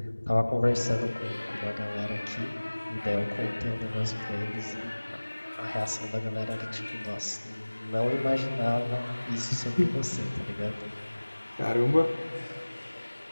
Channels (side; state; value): both; inverted; correlation -1.00